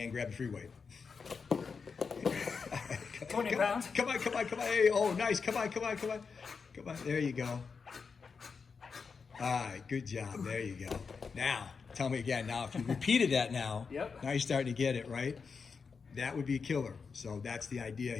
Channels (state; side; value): quieter; right; 5.4 dB